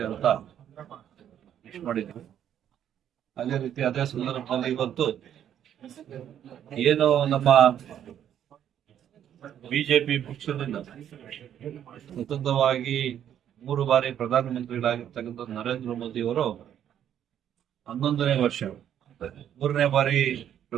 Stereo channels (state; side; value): quieter; left; 10.0 dB